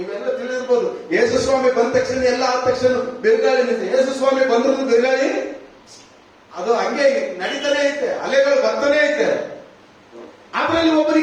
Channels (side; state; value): both; identical; correlation 1.00